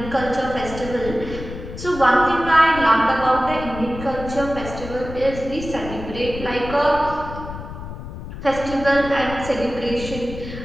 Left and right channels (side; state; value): left; noise; rumble, 10 dB below the sound